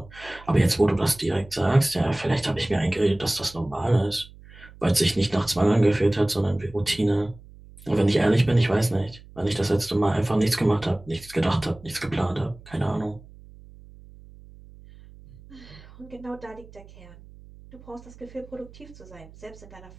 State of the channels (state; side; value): noise; right; hum, 21 dB below the sound